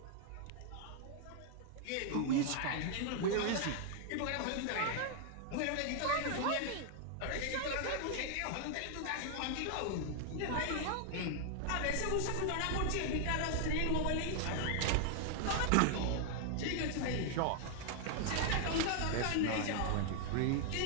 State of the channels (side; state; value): both; different; correlation 0.00